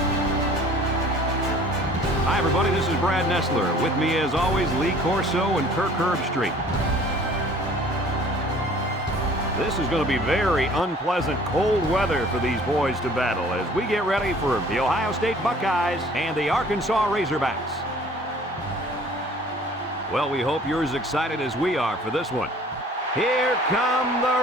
Hi, everybody. This is Brad Nessler. With me, as always, Lee Corso and Kirk Herbstreit. This is going to be very unpleasant, cold weather for these boys to battle as we get ready for the Ohio State Buckeyes and the Arkansas Razorbacks. Well, we hope you're as excited as we are for this one. Here come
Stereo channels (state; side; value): normal; both; correlation 0.51